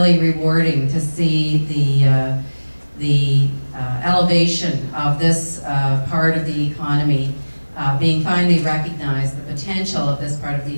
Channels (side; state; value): both; inverted; correlation -1.00